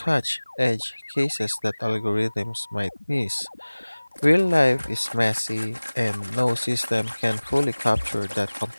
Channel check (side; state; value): both; inverted; correlation -1.00